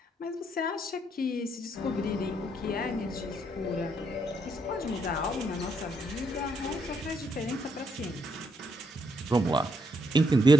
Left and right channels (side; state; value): both; normal; correlation 0.75